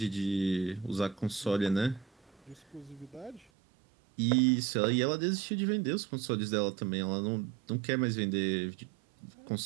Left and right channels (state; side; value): drops out; left; at 3.5 s